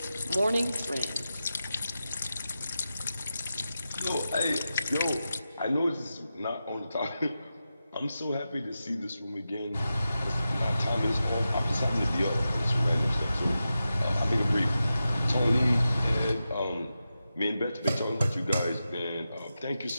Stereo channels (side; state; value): both; inverted; correlation -0.91